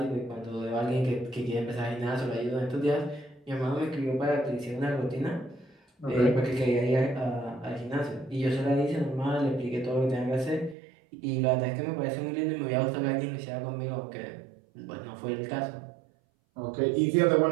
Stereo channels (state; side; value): drops out; left; at 10.8 s